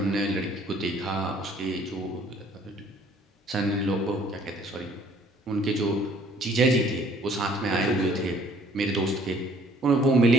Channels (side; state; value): both; normal; correlation 0.58